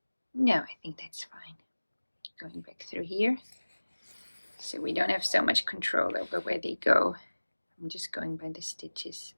No, I think that's fine. Going back through here, so we don't have so much control over where they go. I'm just going by the stitches,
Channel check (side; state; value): both; inverted; correlation -1.00